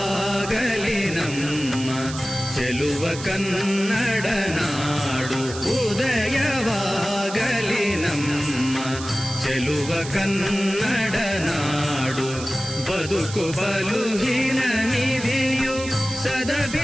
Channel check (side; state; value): right; noise; hiss, 11 dB below the sound